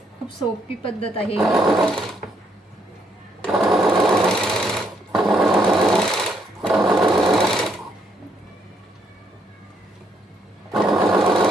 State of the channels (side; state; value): both; normal; correlation 0.73